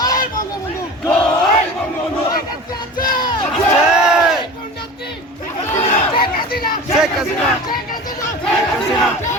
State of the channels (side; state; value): both; normal; correlation 0.35